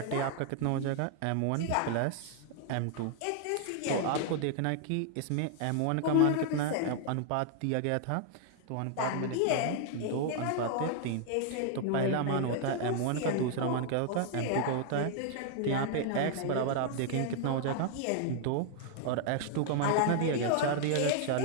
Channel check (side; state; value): both; different; correlation 0.00